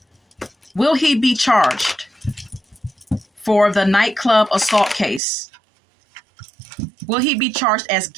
Will he be charged for the nightclub assault case? Will he be charged as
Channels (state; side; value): drops out; left; at 5.2 s